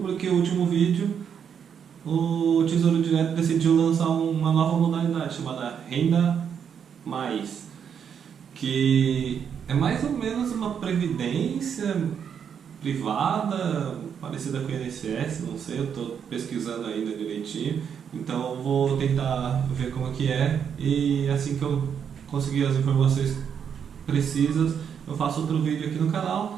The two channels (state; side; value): quieter; left; 7.7 dB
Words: o último vídeo, o Tesouro Direto decidiu lançar uma nova modalidade chamada Renda Mais, que é mais ou menos uma previdência privada, parecida com o INSS, não sei, eu estou pesquisando ainda direitinho, então eu vou tentar ver como é que é, e assim que eu conseguir as informações precisas, eu faço outro vídeo aqui no